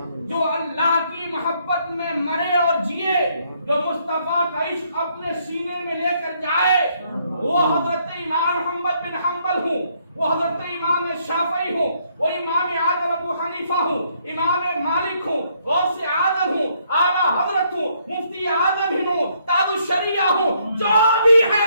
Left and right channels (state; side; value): inverted; both; correlation -0.70